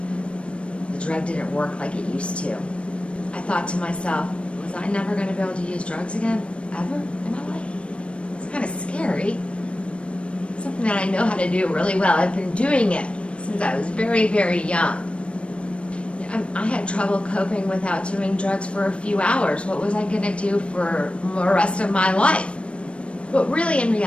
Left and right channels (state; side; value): late; right; 0.060 ms